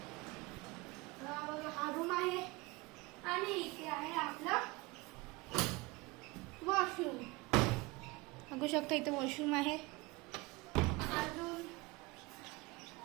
हा रूम आहे आणि इथे आहे आपला वॉशरूम। बघू शकता इथे वॉशरूम आहे। अजून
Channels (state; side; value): quieter; left; 23.9 dB